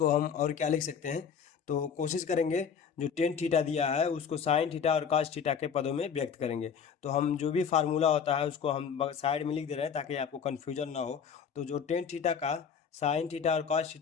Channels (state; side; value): quieter; right; 7.0 dB